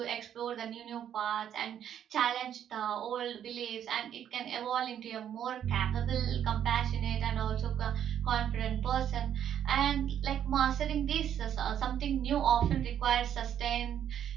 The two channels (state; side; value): quieter; left; 9.7 dB